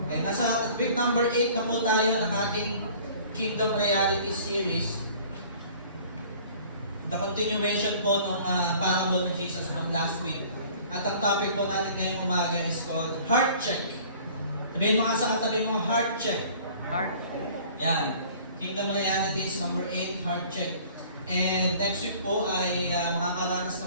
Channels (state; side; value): inverted; both; correlation -0.50